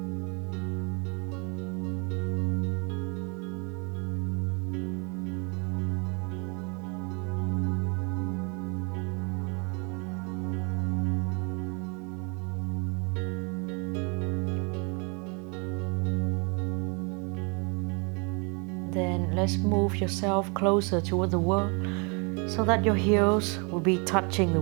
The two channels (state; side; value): quieter; left; 33.6 dB